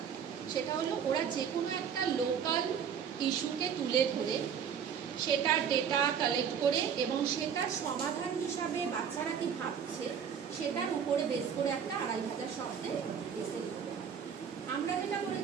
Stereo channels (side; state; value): left; quieter; 7.7 dB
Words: সেটা হলো ওরা যে কোনো একটা লোকাল ইস্যুকে তুলে ধরে সেটার ডেটা কালেক্ট করে এবং সেটার সমাধান হিসাবে বাচ্চারা কি ভাবছে সেটার উপরে বেস করে একটা 2500 শব্দে এসে লিখতে হয়। আমরা যেটা